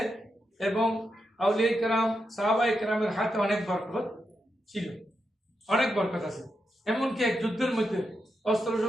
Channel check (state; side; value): normal; both; correlation 0.86